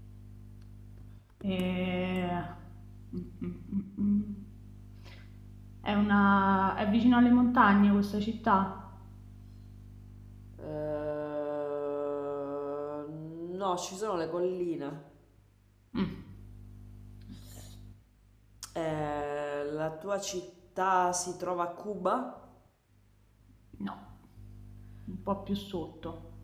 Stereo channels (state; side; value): identical; both; correlation 1.00